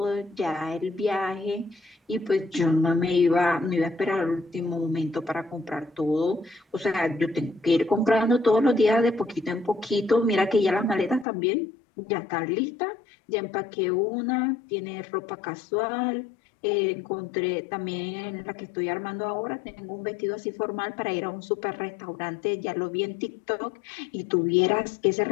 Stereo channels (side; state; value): right; drops out; at 11.2 s